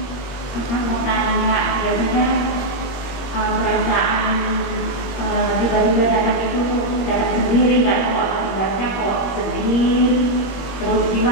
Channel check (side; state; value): right; late; 21 ms